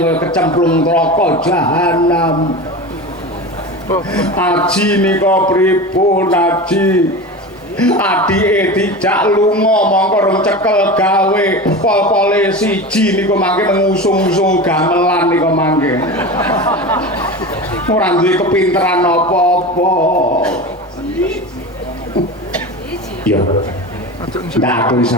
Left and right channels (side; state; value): both; normal; correlation 0.28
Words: kecemplung neraka jahanam. Aji nika pripun Aji? Adike dijak lunga mongko rong cekel gawe pol-pole siji niku mangke ngusung-usung gamelan niku mangke. Ora duwe kepinteran apa-apa. Ya. Ndak aku